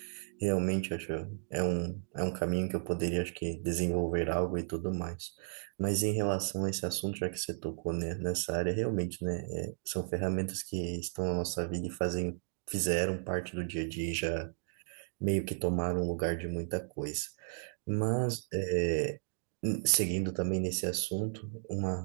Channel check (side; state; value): left; silent; digital silence